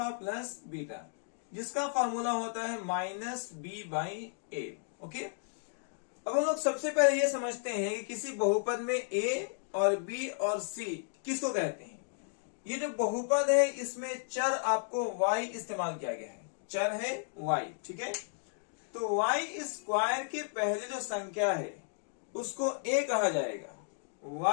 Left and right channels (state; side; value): silent; right; digital silence